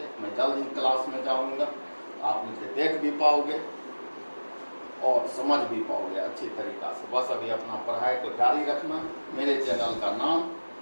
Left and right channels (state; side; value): inverted; both; correlation -1.00